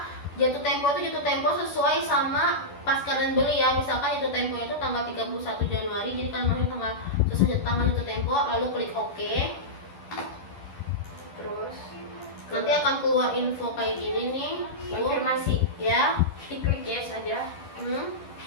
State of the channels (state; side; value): late; right; 11 ms